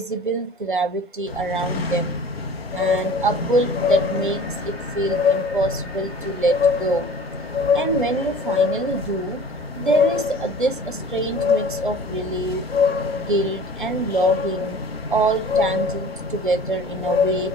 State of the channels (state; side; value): normal; both; correlation 0.44